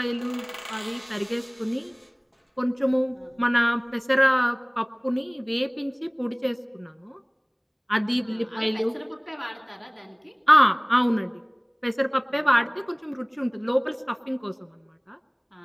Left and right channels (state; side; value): identical; both; correlation 1.00